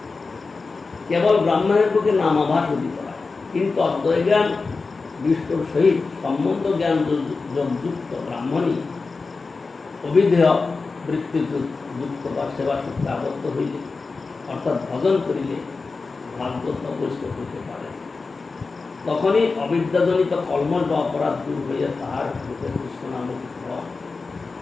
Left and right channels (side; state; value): right; quieter; 4.2 dB